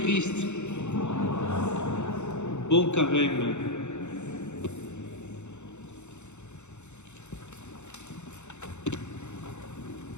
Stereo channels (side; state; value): right; late; 0.83 ms